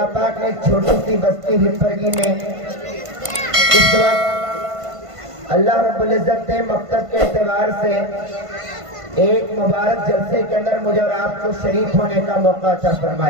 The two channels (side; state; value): left; late; 1.5 ms